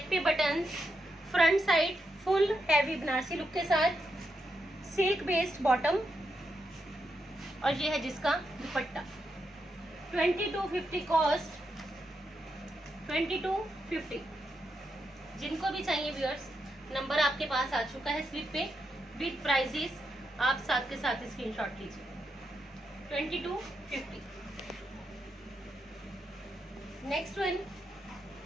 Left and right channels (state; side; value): normal; both; correlation 0.83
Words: पे buttons, front side full heavy Banarasi look के साथ, सिल्क बेस्ड बॉटम और यह है जिसका दुपट्टा। 2250 कॉस्ट 2250। जिनको भी चाहिए व्यूअर्स, नंबर आपके पास आ चुका है स्लिप पे विद प्राइजेस, आप साथ के साथ स्क्रीनशॉट लीजिए। 2250। नेक्स्ट वन